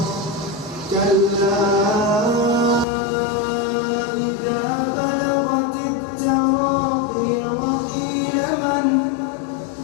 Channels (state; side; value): drops out; right; at 2.9 s